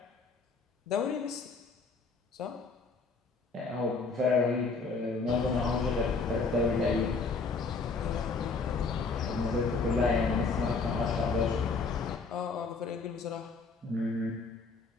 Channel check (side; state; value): right; quieter; 4.3 dB